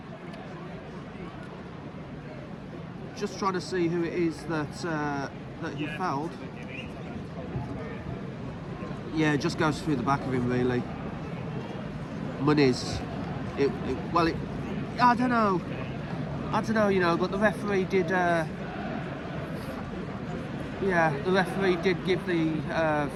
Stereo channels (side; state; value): both; identical; correlation 1.00